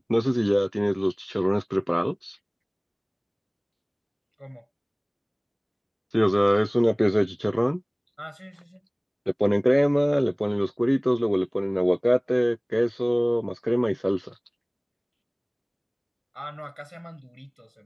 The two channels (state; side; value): identical; both; correlation 1.00